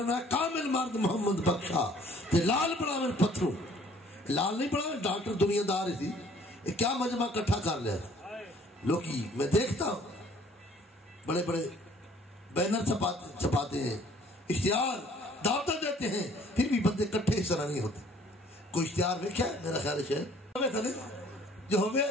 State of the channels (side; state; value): both; normal; correlation 0.57